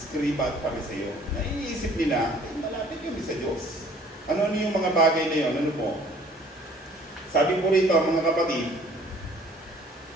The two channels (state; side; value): normal; both; correlation 0.55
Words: at Pariseo, na iniisip nila, malapit yun sa Diyos. Ano yung mga bagay na yun? Ano po? Sabi po rito, mga kapatid,